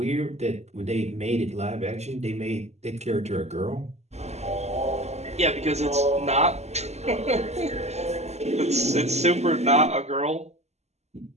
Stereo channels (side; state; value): left; late; 0.32 ms